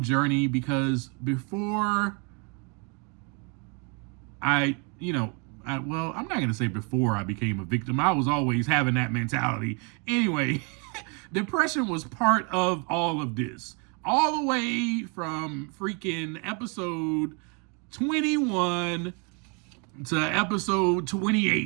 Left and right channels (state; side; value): quieter; left; 34.3 dB